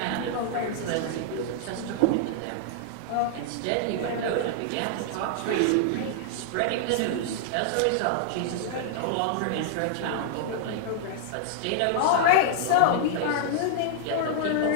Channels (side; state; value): both; different; correlation -0.01